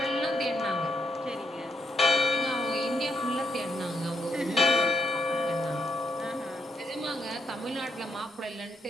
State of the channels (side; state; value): both; normal; correlation 0.76